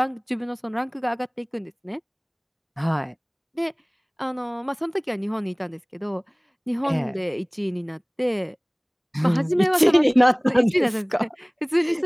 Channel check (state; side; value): identical; both; correlation 1.00